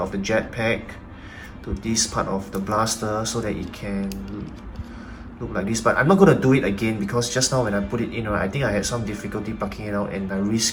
the jetpack to this part of the blaster, so that it can look like this. But I'm not going to do it again because just now when I put it in, right, I think I had some difficulty plucking it out and I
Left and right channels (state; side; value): identical; both; correlation 1.00